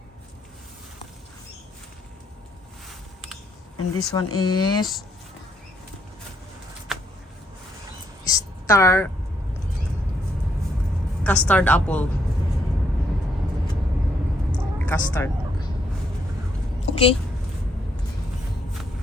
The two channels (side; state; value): both; normal; correlation 0.74